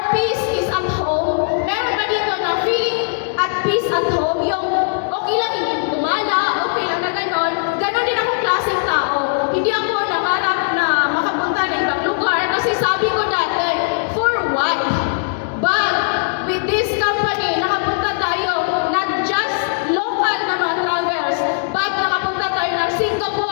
peace is at home? Meron ba dito na feeling at peace at home? Yung okay lang hindi gumala, okay lang na ganon. Ganon din akong klaseng tao. Hindi ako nangarap na makapunta na ibang lugar kasi sabi ko dati, for what? But with this company, nakapunta tayo not just local na mga travels, but nakapunta tayo ng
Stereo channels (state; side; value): silent; right; digital silence